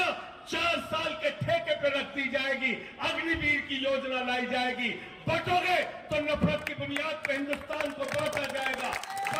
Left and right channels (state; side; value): identical; both; correlation 1.00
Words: 4 साल के ठेके पे रख दी जाएगी, अग्निवीर की योजना लाई जाएगी। बटोगे तो नफरत की बुनियाद पर हिंदुस्तान को बांटा जाएगा।